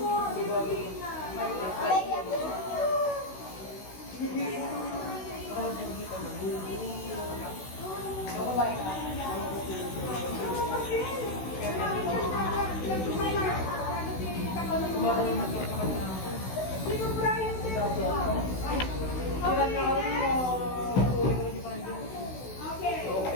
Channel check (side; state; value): right; late; 16 ms